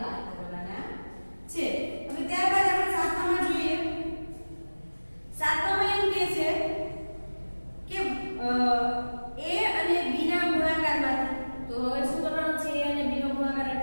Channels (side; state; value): both; inverted; correlation -1.00